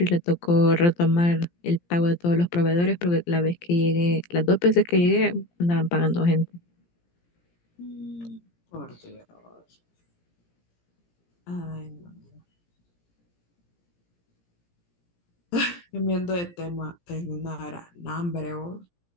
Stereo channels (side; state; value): right; late; 17 ms